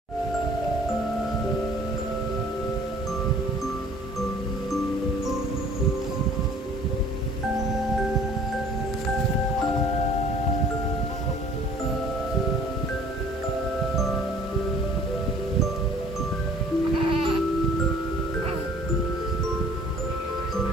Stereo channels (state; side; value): normal; both; correlation 0.53